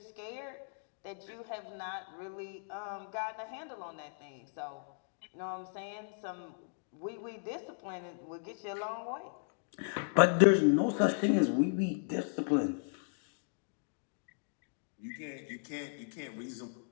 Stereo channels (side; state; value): right; silent; digital silence